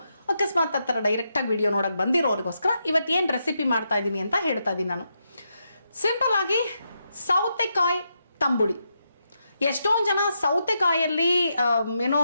ಅಕಸ್ಮಾತ್ ಆ ಥರ ಡೈರೆಕ್ಟಾಗಿ ವಿಡಿಯೋ ನೋಡೋಕ್ಕೆ ಬಂದಿರೋರಿಗೋಸ್ಕರ ಇವತ್ತೇನು ರೆಸಿಪಿ ಮಾಡ್ತಾ ಇದ್ದೀನಿ ಅಂತ ಹೇಳ್ತಾ ಇದ್ದೀನಿ ನಾನು. ಸಿಂಪಲ್ ಆಗಿ ಸೌತೆಕಾಯಿ ತಂಬುಳಿ. ಎಷ್ಟೊಂದು ಜನ ಸೌತೆಕಾಯಲ್ಲಿ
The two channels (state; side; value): inverted; both; correlation -0.83